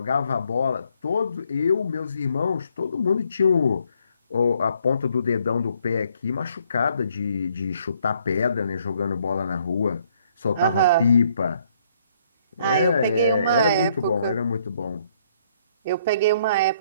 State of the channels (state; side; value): inverted; both; correlation -0.68